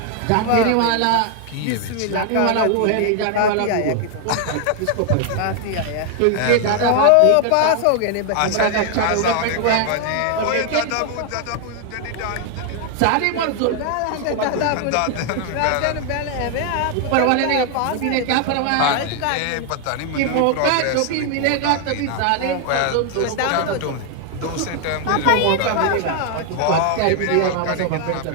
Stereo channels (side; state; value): both; different; correlation 0.00